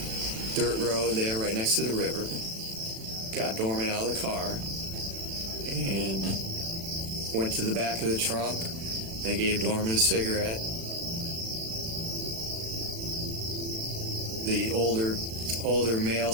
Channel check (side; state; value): left; late; 36 ms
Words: dirt road there right next to the river, got Dorman out of the car, and went to the back of the trunk. They gave Dorman a cigarette. The older male